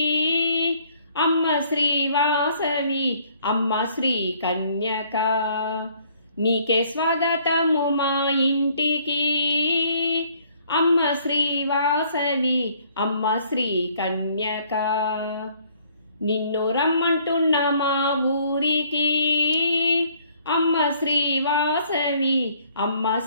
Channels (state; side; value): inverted; both; correlation -0.62